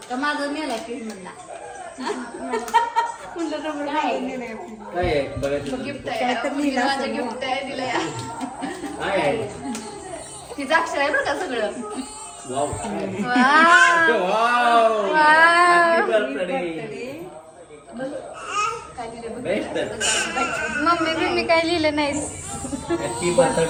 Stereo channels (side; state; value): both; identical; correlation 1.00